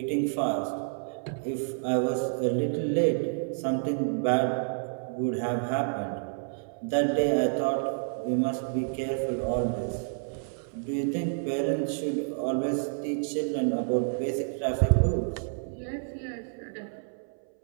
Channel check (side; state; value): left; silent; 58 dB below the other